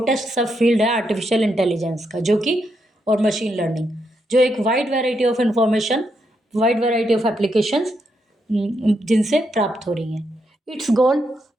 सब field है artificial intelligence का, जो कि, और machine learning, जो एक wide variety of information, wide variety of applications जिनसे प्राप्त हो रही हैं। It's goal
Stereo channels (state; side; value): normal; both; correlation 0.81